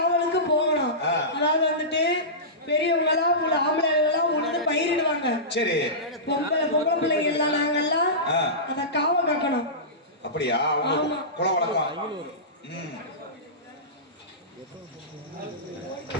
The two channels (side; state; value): both; normal; correlation -0.19